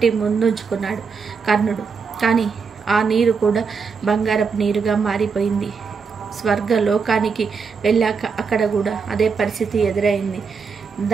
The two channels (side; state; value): left; quieter; 5.5 dB